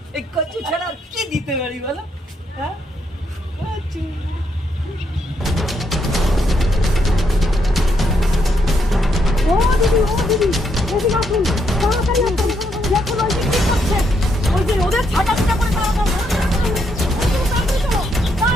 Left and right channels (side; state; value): both; normal; correlation 0.76